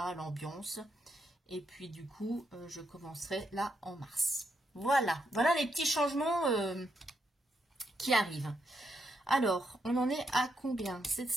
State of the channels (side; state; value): both; normal; correlation 0.79